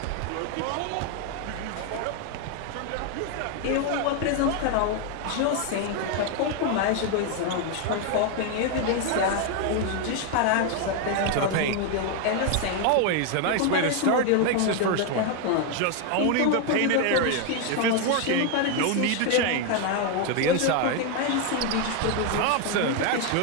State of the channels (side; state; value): both; different; correlation 0.01